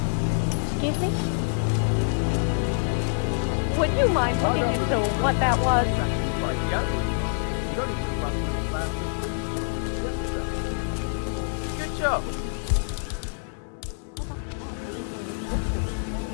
Excuse me? Would you mind looking into what that was? Good job.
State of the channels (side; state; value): right; silent; digital silence